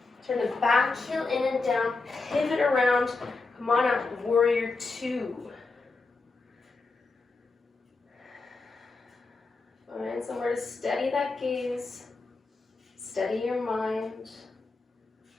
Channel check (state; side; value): quieter; right; 3.8 dB